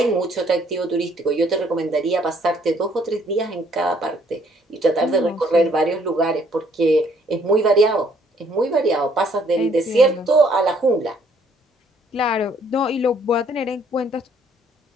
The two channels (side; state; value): both; normal; correlation 0.64